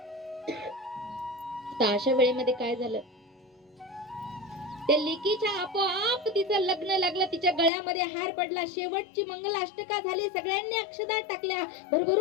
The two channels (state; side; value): drops out; right; at 7.7 s